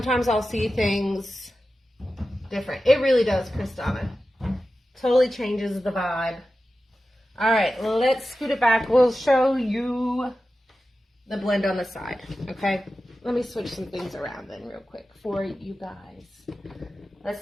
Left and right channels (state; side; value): normal; both; correlation 0.93